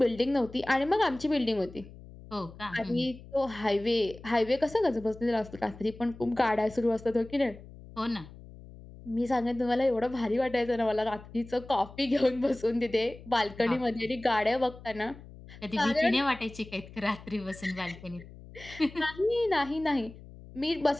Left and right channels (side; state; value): left; noise; hum, 18 dB below the sound